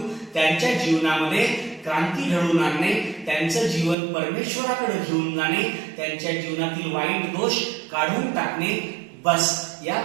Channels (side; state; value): left; drops out; at 4.0 s